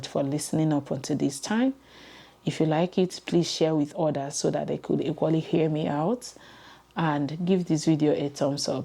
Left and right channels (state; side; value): identical; both; correlation 1.00